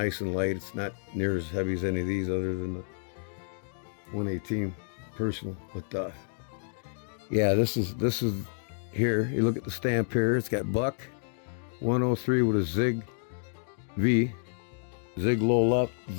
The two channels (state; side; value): silent; right; digital silence